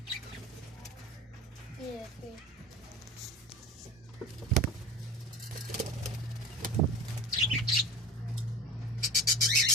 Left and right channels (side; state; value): both; normal; correlation 0.34